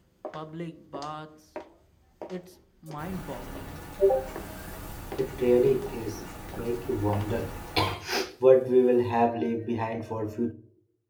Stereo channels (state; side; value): identical; both; correlation 1.00